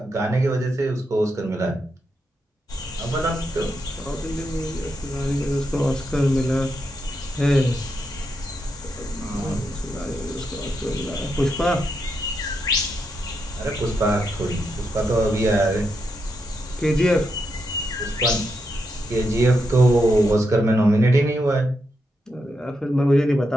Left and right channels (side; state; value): both; normal; correlation 0.83